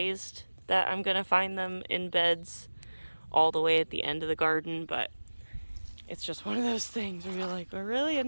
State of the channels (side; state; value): both; inverted; correlation -1.00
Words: that I'm gonna find them in beds all the way at the end of the garden, but it's just one of those things where you're like, oh, really,